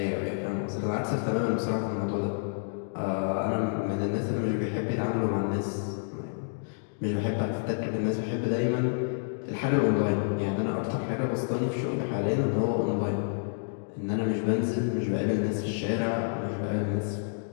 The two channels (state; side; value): silent; right; digital silence